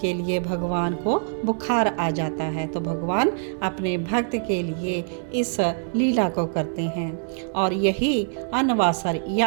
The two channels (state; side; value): silent; left; digital silence